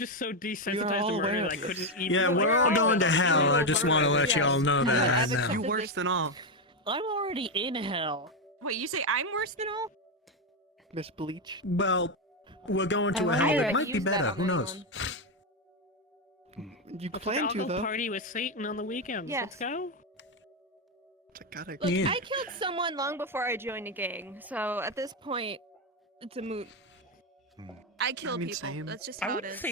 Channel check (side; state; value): both; normal; correlation 0.07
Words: so We are desensitized all to aware murder of that I couldn't this. even... Yeah, we're all going to hell. I just want to let you all know that right now. You worse than all. I'm already in hell. Wait, you say I'm worse than all? Miss Bleach. Well, we're going to a I hell wonder that if might be use that better. on Who knows? anyone. You Let's plan all to, go though. party with Satan on the weekends. Yes. Let's go. I gotta... Look, Yeah. I killed someone long before I joined a gang, so at this point, it's a moot. I kill mean, people. same. That's just I how it wouldn't is.